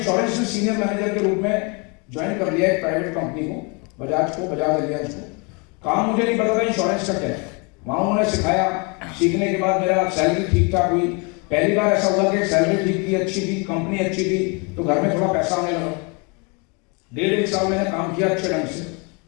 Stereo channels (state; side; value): quieter; right; 31.4 dB